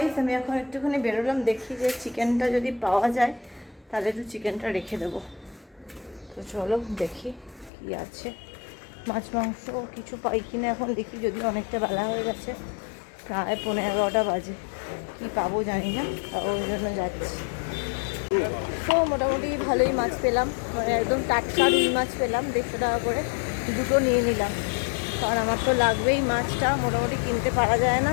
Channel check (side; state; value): right; drops out; at 7.7 s